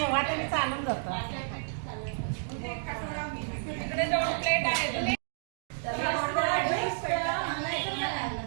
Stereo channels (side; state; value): left; silent; digital silence